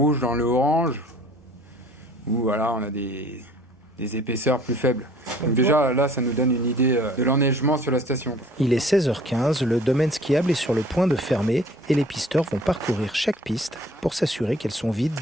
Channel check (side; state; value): both; normal; correlation 0.52